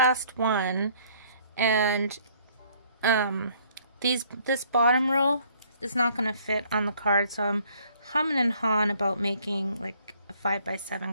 one, and this bottom row is not going to fit on the card, so I'm humming and hawing about making like a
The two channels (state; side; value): inverted; both; correlation -0.61